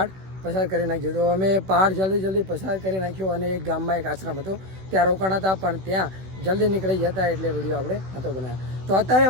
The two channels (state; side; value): late; left; 16 ms